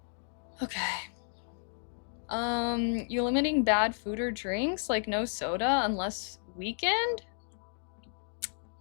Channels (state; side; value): silent; right; digital silence